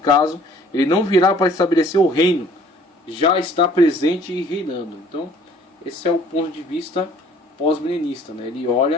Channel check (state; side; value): normal; both; correlation 0.55